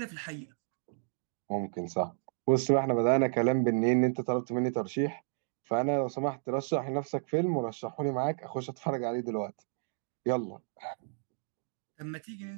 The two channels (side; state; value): left; silent; digital silence